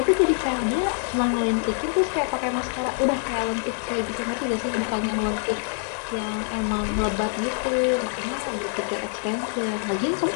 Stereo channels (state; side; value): silent; right; 57 dB below the other